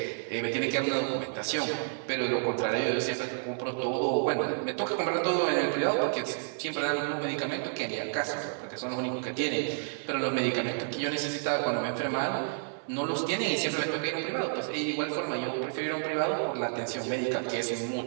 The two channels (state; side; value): silent; left; 57 dB below the other